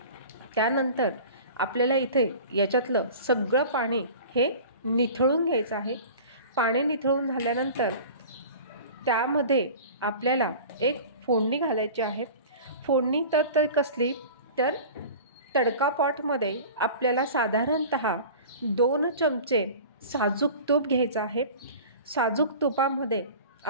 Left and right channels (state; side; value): inverted; both; correlation -0.39